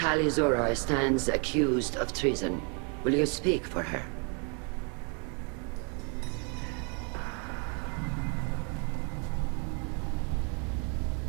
Zora stands accused of treason. Will you speak for her?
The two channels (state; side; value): quieter; left; 37.2 dB